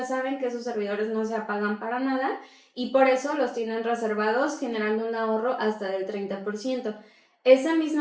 saben que esos servidores no se apagan para nada y por eso los tienen reservados, generando un ahorro hasta del 30%. Esa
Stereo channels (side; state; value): both; identical; correlation 1.00